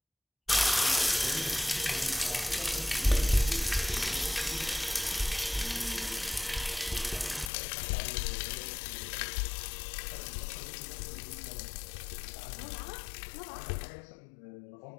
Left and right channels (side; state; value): right; drops out; at 7.5 s